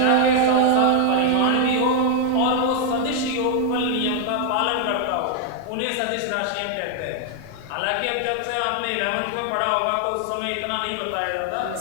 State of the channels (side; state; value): both; different; correlation 0.00